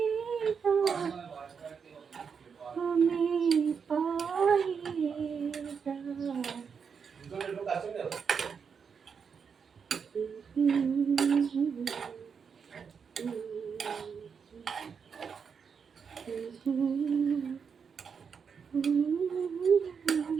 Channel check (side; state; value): left; quieter; 6.3 dB